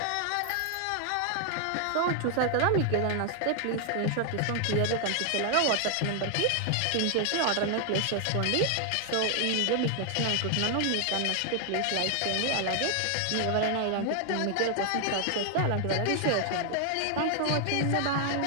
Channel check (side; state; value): both; different; correlation 0.00